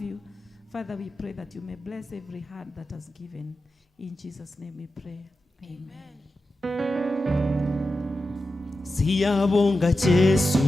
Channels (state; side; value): normal; both; correlation 0.91